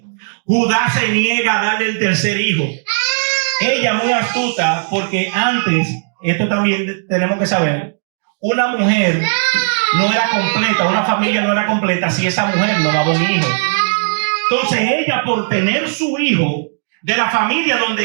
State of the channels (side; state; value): left; silent; digital silence